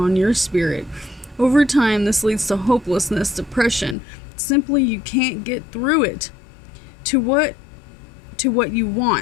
your spirit. Over time, this leads to hopelessness, depression. Simply, you can't get through it. To what you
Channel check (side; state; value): right; drops out; at 4.0 s